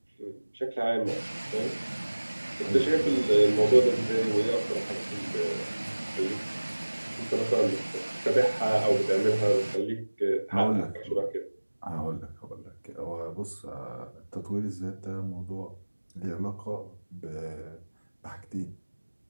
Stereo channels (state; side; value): inverted; both; correlation -1.00